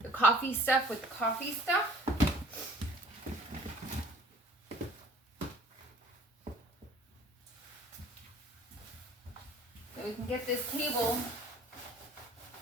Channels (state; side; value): normal; both; correlation 0.51